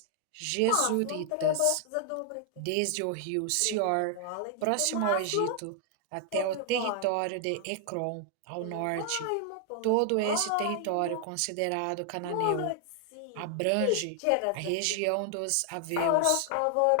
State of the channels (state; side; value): different; both; correlation 0.00